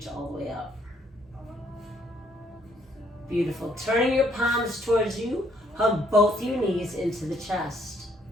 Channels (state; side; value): normal; both; correlation 0.68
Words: all the way up. Beautiful. Turning your palms towards you, hug both your knees into the chest.